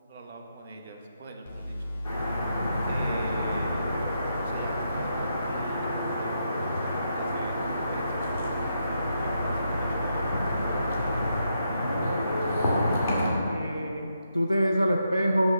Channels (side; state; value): both; inverted; correlation -0.81